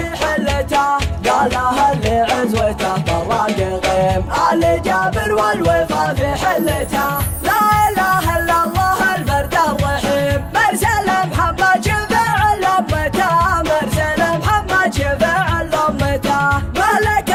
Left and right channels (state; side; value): identical; both; correlation 1.00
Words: حلته. قالها اللي عزوته بالراق غيم، الجابر والوفا في حلته. لا اله الا الله الفرد الرحيم، مرسل محمد شفع لأمته، مرسل محمد شفع لأمته.